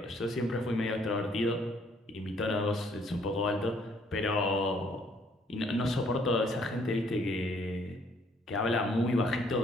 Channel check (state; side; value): normal; both; correlation 0.64